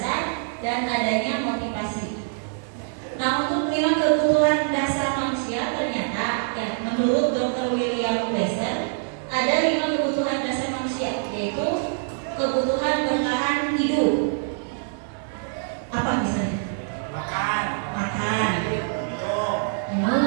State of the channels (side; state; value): left; silent; digital silence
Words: dan adanya motivasi. Nah, untuk 5 kebutuhan dasar manusia ternyata ya menurut Dr. William Glasser ada 5 kebutuhan dasar manusia, yaitu kebutuhan bertahan hidup. Apa misalnya? Makan. Makan, Minum.